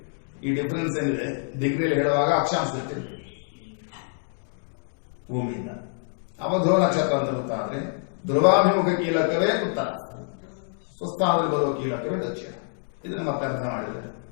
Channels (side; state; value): right; silent; digital silence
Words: ಈ ಡಿಫರೆನ್ಸ್ ಏನಿದೆ ಡಿಗ್ರಿಯಲ್ಲಿ ಹೇಳುವಾಗ ಅಕ್ಷಾಂಶ ಇರ್ತಿರ್ಬೇಕು ಭೂಮಿಯಿಂದ. ಅವ ಧ್ರುವ ನಕ್ಷತ್ರ ಅಂತ ಗೊತ್ತಾದ್ರೆ ಧ್ರುವಾಭಿಮುಖ ಕೀಲಕವೇ ಉತ್ತರ, ಸ್ವಸ್ಥಾನದಲ್ಲಿ ಬರುವ ಕೀಲಕವೇ ದಕ್ಷಿಣ. ಇದನ್ನು ಮತ್ತೆ ಅರ್ಥ ಮಾಡಿದರೆ